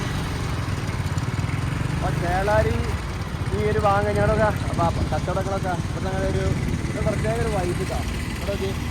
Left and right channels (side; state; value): both; identical; correlation 1.00